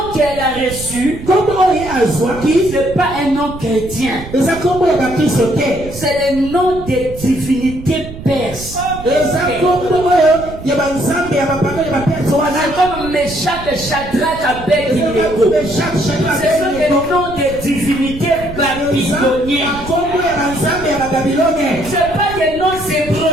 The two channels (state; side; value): noise; right; rumble, 13 dB below the sound